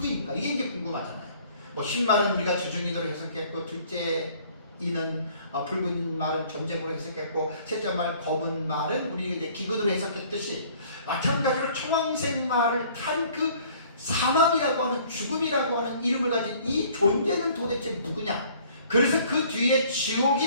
이게 이제 궁금하잖아요. 뭐 흰말은 우리가 주중이도로 해석했고 둘째 이는 붉은 말은 전쟁으로 해석했고 셋째 말 검은 말은 우리 이제 기근으로 해석했듯이 마찬가지로 청황색 말을 탄 그 사망이라고 하는 죽음이라고 하는 이름을 가진 이 존재는 도대체 누구냐? 그래서 그 뒤에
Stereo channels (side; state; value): both; inverted; correlation -0.55